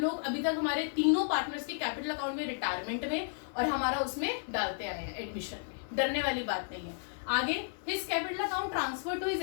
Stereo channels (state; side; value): silent; right; 56 dB below the other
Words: अभी तक हमारे तीनों पार्टनर्स के कैपिटल अकाउंट में, रिटायरमेंट में और हमारा उसमें डालते आए हैं एडमिशन में, डरने वाली बात नहीं है। आगे his capital account transfer to his